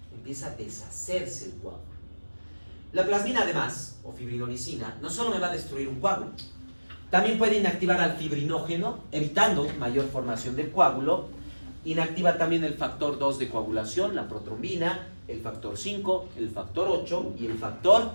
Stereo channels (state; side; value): inverted; both; correlation -1.00